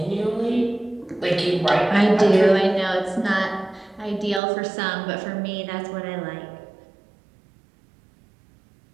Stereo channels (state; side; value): drops out; left; at 4.4 s